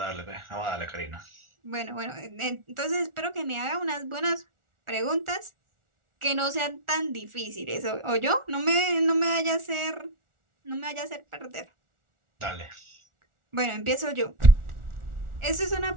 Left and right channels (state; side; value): late; left; 1.4 ms